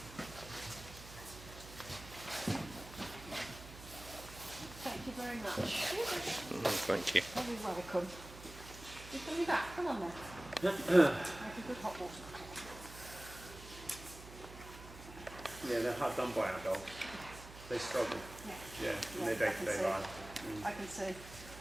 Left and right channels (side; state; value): right; noise; hum, 15 dB below the sound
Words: Thank you very much. Thank you. You're welcome. You're going to be back. Come on then. Make a good hot water. Yeah, they're hard done by our dogs. They struggle. Yeah. Yeah, in their day-to-day life. I can see.